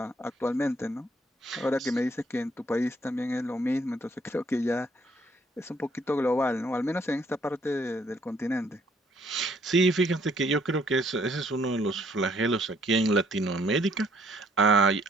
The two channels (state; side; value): normal; both; correlation 0.65